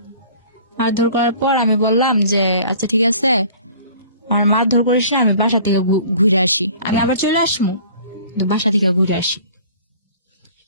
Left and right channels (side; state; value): both; inverted; correlation -0.49